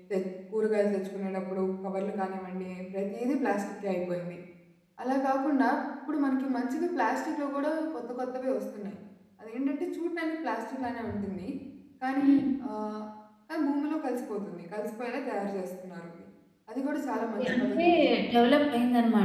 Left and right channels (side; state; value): both; identical; correlation 1.00